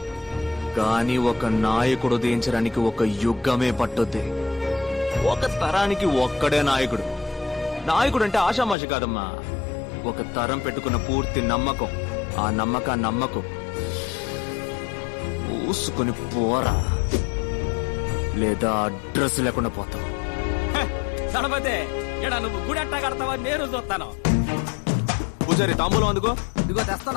కానీ ఒక నాయకుడు ఉదయించడానికి ఒక యుగమే పట్టుద్ది. ఒక తరానికి ఒక్కడే నాయకుడు. నాయకుడు అంటే ఆషామాషి కాదమ్మా. ఒక తరం పెట్టుకున్న పూర్తి నమ్మకం. ఆ నమ్మకాన్ని నమ్మకం పూసుకుని పోరా, లేదా అడ్రస్ లేకుండా పోతావు. దళపతి, ఇక్కడ నువ్వు గుడి ఎట్టా కడతావని నేను చూస్తాను. పూజారి తాంబూలం అందుకో. ఇదిగో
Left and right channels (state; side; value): drops out; right; at 8.8 s